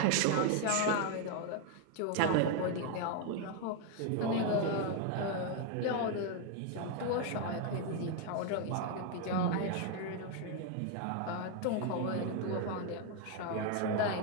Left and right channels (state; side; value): different; both; correlation 0.01